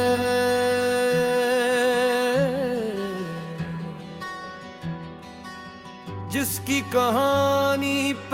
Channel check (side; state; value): both; identical; correlation 1.00